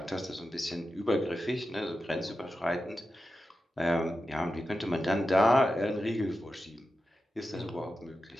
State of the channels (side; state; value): both; normal; correlation 0.91